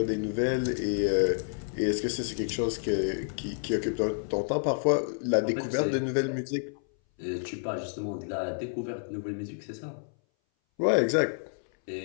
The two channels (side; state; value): right; silent; 58 dB below the other